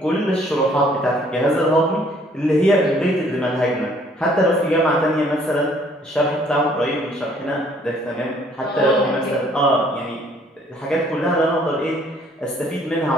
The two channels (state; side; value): normal; both; correlation 0.61